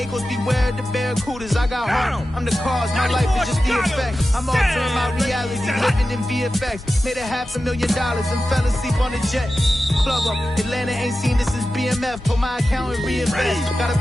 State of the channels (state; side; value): normal; both; correlation 0.93